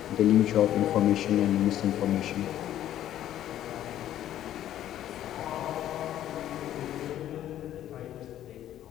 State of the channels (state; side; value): quieter; right; 12.0 dB